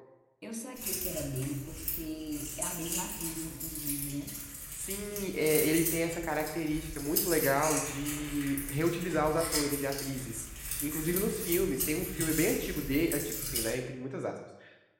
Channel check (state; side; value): identical; both; correlation 1.00